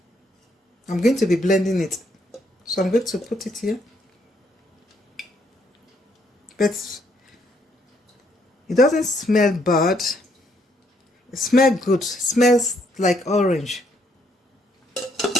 I'm going to be blending it. So I'm going to put it here. But it doesn't smell bad. It smells good. It smells like orange.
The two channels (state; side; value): normal; both; correlation 0.72